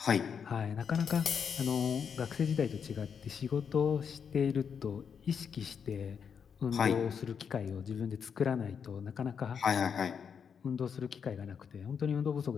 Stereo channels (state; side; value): quieter; right; 6.9 dB